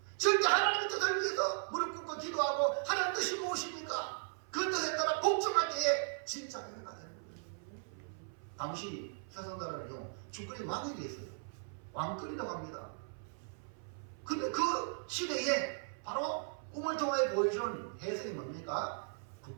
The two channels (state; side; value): silent; left; 53 dB below the other